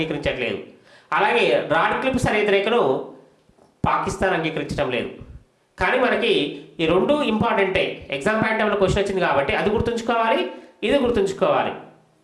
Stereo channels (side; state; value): both; identical; correlation 1.00